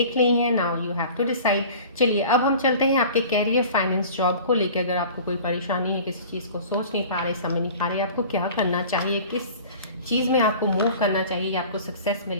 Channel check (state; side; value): inverted; both; correlation -0.43